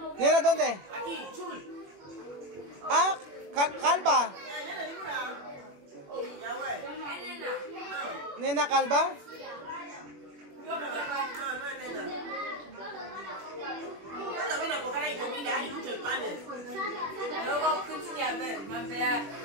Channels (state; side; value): late; left; 21 ms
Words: Nena, ¿dónde? Aquí, Jul. Ah, Calva. Nena Calva.